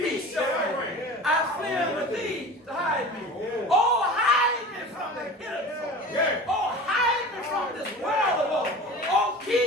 shall reign, I flee unto thee to hide me. Oh, hide me from the hidden. Oh, hide me from this world of woe. Oh,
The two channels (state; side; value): normal; both; correlation 0.37